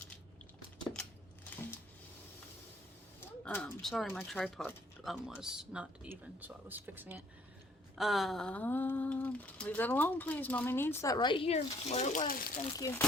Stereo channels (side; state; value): both; normal; correlation 0.62